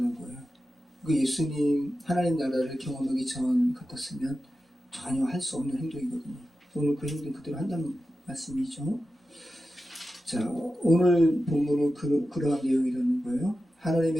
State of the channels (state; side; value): normal; both; correlation 0.92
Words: 거예요. 그 예수님 하나님 나라를 경험하기 전 같았으면 전혀 할 수 없는 행동이거든요. 오늘 그 행동 그대로 한다는 말씀이죠. 자, 오늘 본문은 그러한 내용이라는 거예요.